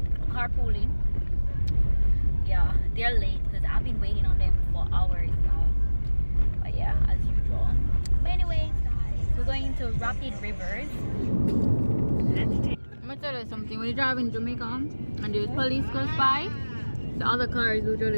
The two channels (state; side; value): inverted; both; correlation -1.00